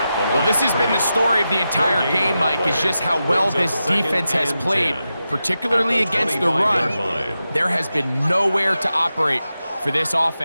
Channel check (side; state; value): both; inverted; correlation -0.90